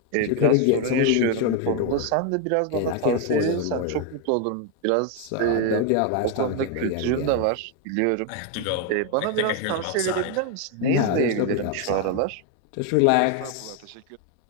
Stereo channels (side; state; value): both; different; correlation 0.01